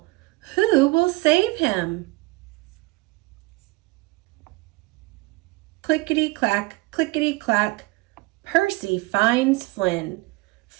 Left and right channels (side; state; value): left; quieter; 22.9 dB